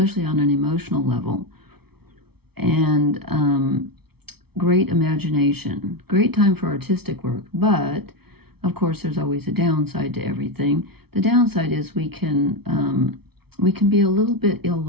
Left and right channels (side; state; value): left; late; 0.96 ms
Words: on an emotional level, and great imagination, great time for artistic work. But of course, there's always a downside to everything. The downside is we can be a little bit